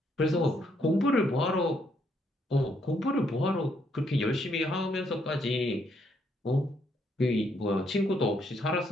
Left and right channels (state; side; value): normal; both; correlation 0.73